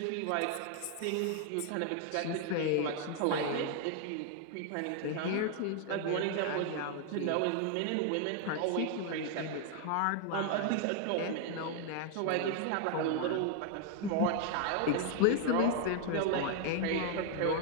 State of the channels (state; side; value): different; both; correlation 0.00